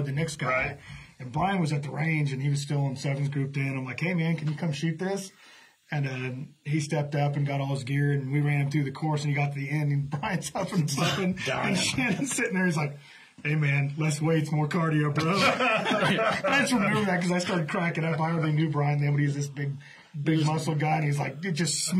the next guy. Right. And Bryan was at the range, and he was still in sevens grouped in. I'm like, hey, man, can you come shoot this? And he stepped up and got all his gear, and we ran him through the course, and he got to the end, and Bryan's up and something, and Shannon's sitting there. He's like, hey, man, less weights, more cardio, bro. I just remember that because I started cracking up. I hardly knew Bryan then, but he was this big muscle guy, and he's like, dude, just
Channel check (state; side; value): identical; both; correlation 1.00